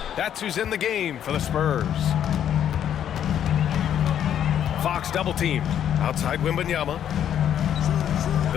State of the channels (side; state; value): right; quieter; 9.8 dB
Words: That's who's in the game for the Spurs. Fox double team outside Wembanyama.